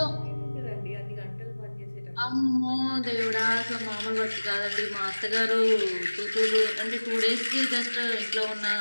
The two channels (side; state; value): both; inverted; correlation -1.00